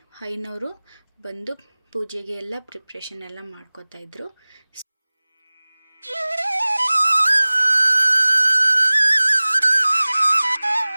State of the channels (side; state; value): both; inverted; correlation -1.00